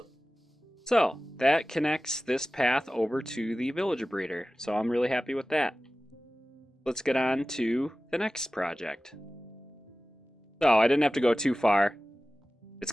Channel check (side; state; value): both; normal; correlation 0.96